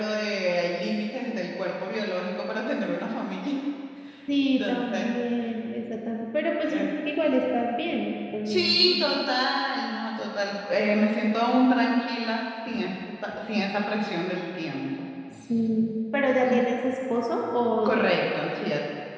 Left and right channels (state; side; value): identical; both; correlation 1.00